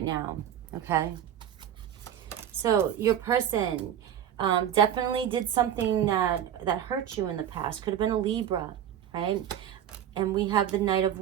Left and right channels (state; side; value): quieter; left; 10.0 dB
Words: now. Okay. So your person definitely did something that hurt you in the past. Could have been a Libra, right? And we have the Knight of